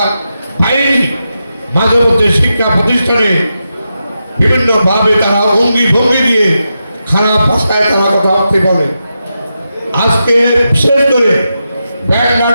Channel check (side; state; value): both; inverted; correlation -0.88